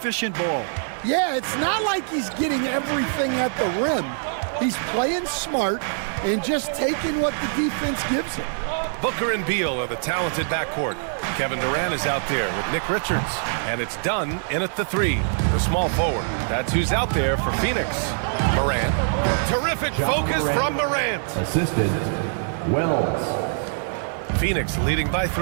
ball. Yeah, it's not like he's getting everything at the rim. He's playing smart and just taking what the defense gives him. Booker and Beal are the talented backcourt. Kevin Durant is out there with Nick Richards. And it's Dunn in at the 3, the small forward. That's who's out there for Phoenix. Morant. Terrific focus from Morant. Assisted, Wells. Phoenix leading by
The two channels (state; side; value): silent; left; 56 dB below the other